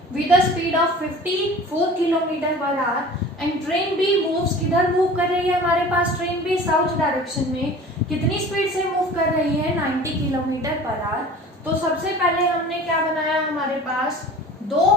with a speed of 54 kilometre per hour. And train B moves किधर मूव कर रही है हमारे पास? ट्रेन बी साउथ डायरेक्शन में। कितनी स्पीड से मूव कर रही है? 90 किलोमीटर पर आवर। तो सबसे पहले हमने क्या बनाया? हमारे पास 2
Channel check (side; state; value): both; normal; correlation 0.42